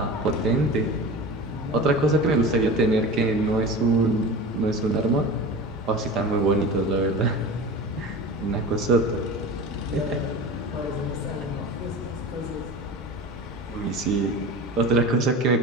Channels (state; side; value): normal; both; correlation 0.33